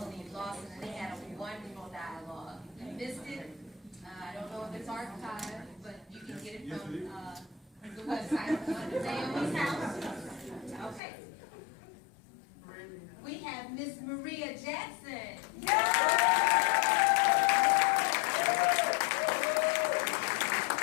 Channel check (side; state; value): right; drops out; at 11.0 s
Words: Lawson, and they had a wonderful dialogue. If you missed it, I don't know if it's archived, but you can get it from the website, Naomi House. Okay. We have Miss Maria Jackson.